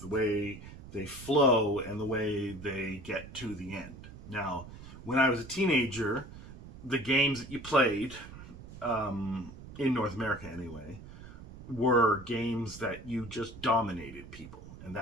the way they flow, and the way they get to the end. Now, when I was a teenager, the games that you played, in North America anyway, were games that you just dominated people. And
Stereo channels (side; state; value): right; noise; rumble, 15 dB below the sound